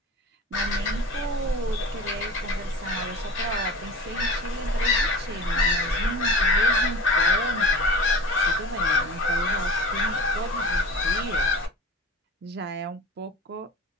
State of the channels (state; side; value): normal; both; correlation 0.35